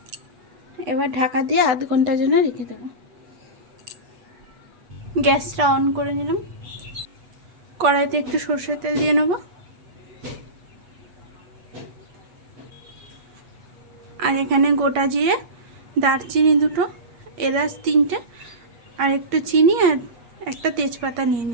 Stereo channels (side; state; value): left; late; 8.2 ms